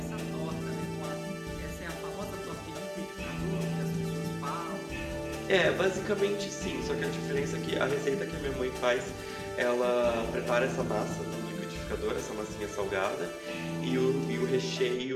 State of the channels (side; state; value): both; identical; correlation 1.00